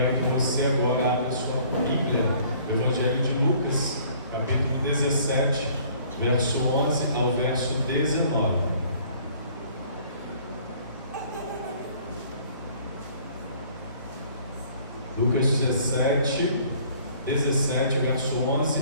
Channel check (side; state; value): both; inverted; correlation -0.56